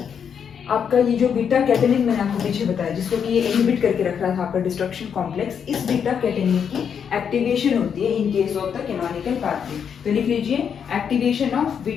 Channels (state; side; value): quieter; right; 7.5 dB